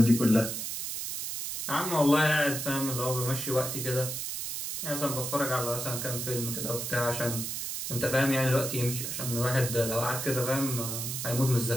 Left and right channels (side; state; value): right; noise; hiss, 4 dB below the sound